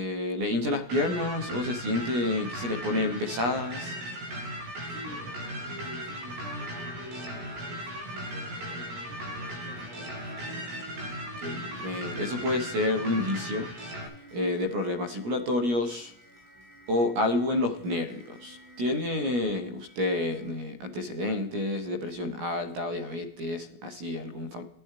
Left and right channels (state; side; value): late; left; 17 ms